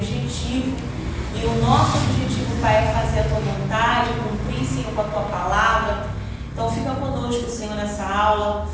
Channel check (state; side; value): identical; both; correlation 1.00